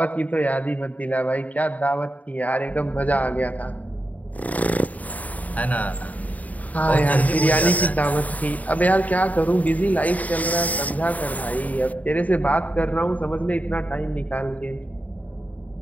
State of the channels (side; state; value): right; late; 0.073 ms